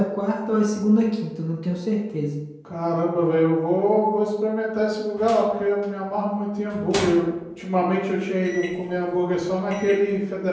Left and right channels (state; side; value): identical; both; correlation 1.00